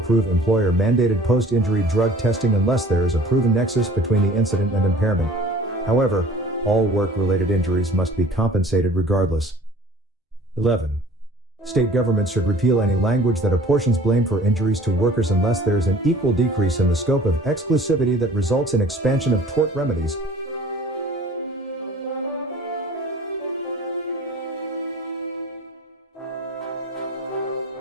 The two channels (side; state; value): both; normal; correlation 0.48